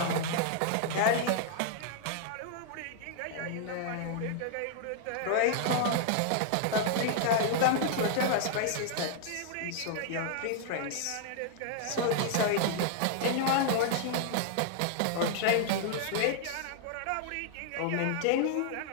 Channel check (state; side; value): different; both; correlation -0.01